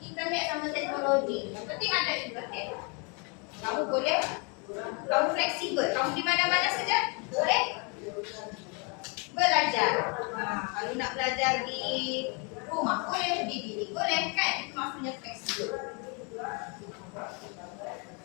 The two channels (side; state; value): right; quieter; 34.1 dB